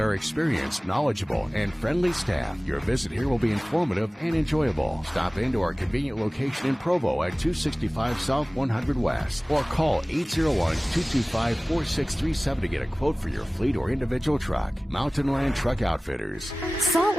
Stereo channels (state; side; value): normal; both; correlation 0.98